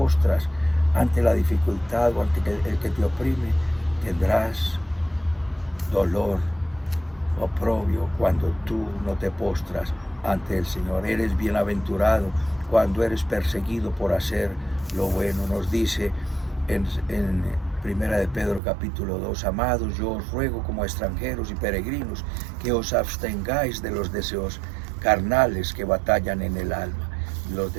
ante la dificultad o ante el que te oprime, tendrás dolor, oprobio, cuando tú no te postras ante el Señor. Eres bienaventurado cuando eres perseguido por hacer lo bueno. Nos dice en Primera de Pedro capítulo 2, amados, yo os ruego como extranjeros y peregrinos que os abstengáis de los deseos carnales que batallan en el alma, los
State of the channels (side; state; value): left; drops out; at 18.6 s